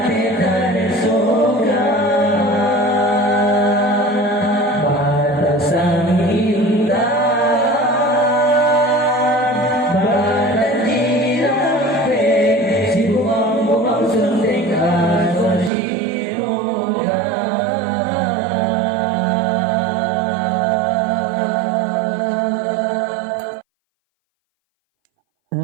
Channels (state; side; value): drops out; left; at 15.7 s